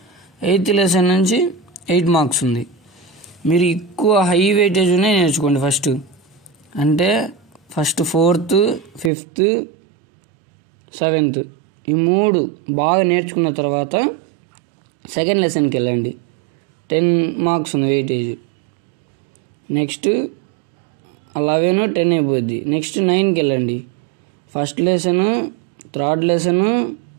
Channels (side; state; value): left; drops out; at 9.1 s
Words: ఎయిత్ లెసన్ నుంచి 8 మార్క్స్ ఉంది. మీరు ఎక్కువ హై వెయిటేజ్ ఉన్నాయి నేర్చుకోండి. ఫస్ట్ ఫోర్త్, ఫిఫ్త్, సెవెంత్ ఈ 3 బాగా నేర్చుకున్న తర్వాత సెకండ్ లెసన్కి వెళ్ళండి. 10 మార్క్స్ ఉంది వెయిటేజ్. నెక్స్ట్ 11, 10 అయిపోద్ది. నెక్స్ట్ 9కి వెళ్ళండి. First lesson, third lesson,